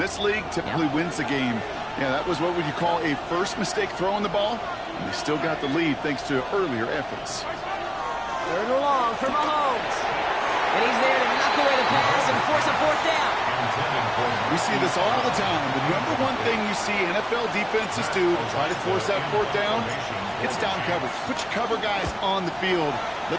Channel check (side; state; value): both; identical; correlation 1.00